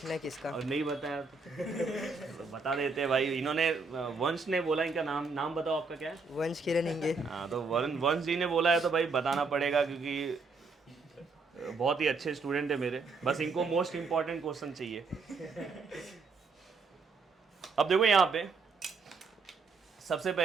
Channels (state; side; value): quieter; left; 4.3 dB